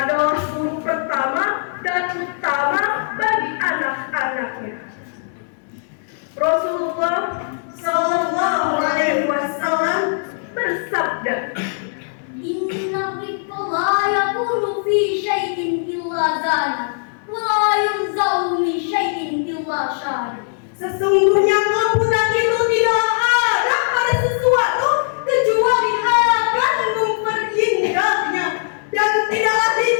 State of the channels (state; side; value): silent; right; digital silence